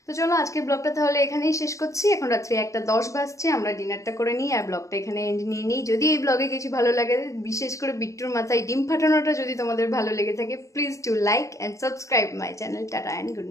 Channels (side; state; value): right; late; 0.15 ms